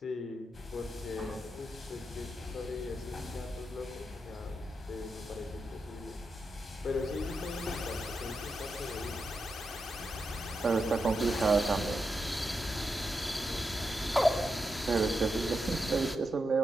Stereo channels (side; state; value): both; normal; correlation 0.86